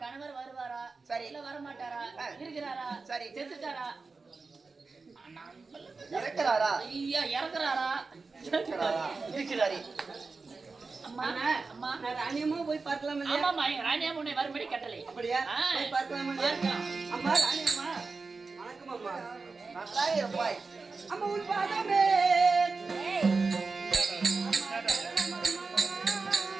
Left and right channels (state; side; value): quieter; left; 4.2 dB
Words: கணவர் வருவாரா? சரி இல்ல வர மாட்டாரா? இருக்கிறாரா? சரி செத்துட்டாரா? இறக்குறாரா? ஐயா இறக்குறாரா? இருக்கிறாரு. அம்மா அம்மா நான் ராணியம்மா போய் பார்க்கலாம் இல்லையா? ஆமாம்மா, ராணியம்மா உன்னை வரும்படி கட்டளை. அப்படியா? போய் பார்க்கலாம் இல்லையா? அம்மா ராணியம்மா வணக்கம் அம்மா. நல்லா இருப்பாய். அம்மா உன் பாதமே